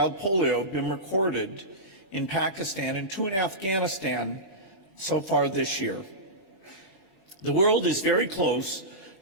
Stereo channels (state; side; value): late; right; 20 ms